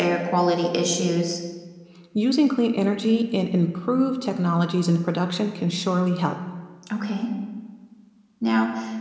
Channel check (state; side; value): identical; both; correlation 1.00